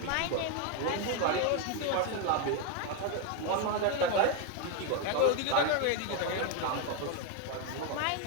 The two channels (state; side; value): different; both; correlation 0.01